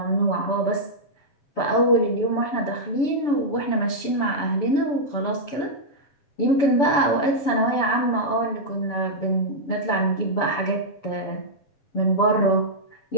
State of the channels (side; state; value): right; late; 7.1 ms